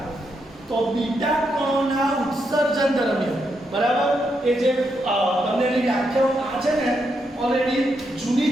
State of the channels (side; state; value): both; normal; correlation 0.81